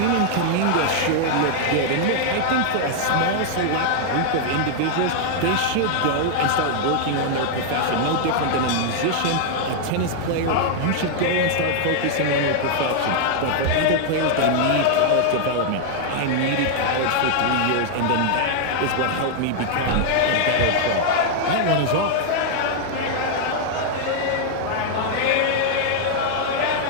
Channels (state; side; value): different; both; correlation 0.00